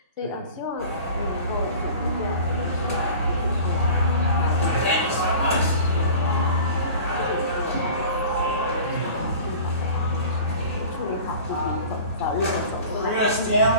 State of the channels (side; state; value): both; inverted; correlation -0.40